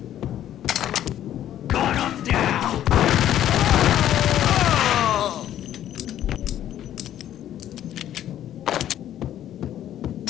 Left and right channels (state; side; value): quieter; right; 11.6 dB